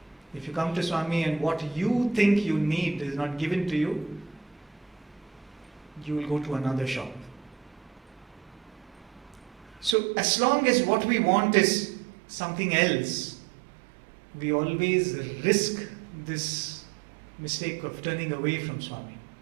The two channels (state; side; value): drops out; left; at 10.0 s